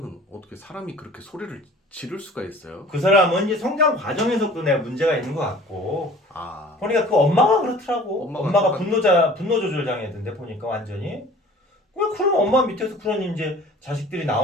어떻게 사람이 그렇게 소리를 지를 수가 있어요? 그 사람은 이제 성장 과정에서도 내가 문제가 있는 것 같고, 아, 보니까 그 엄마가 그렇더라고. 엄마가 똑같- 분노 조절 장애던데 보니까 완전히. 그런 엄마 밑에서 그런 이제 자식들이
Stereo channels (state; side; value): normal; both; correlation 0.47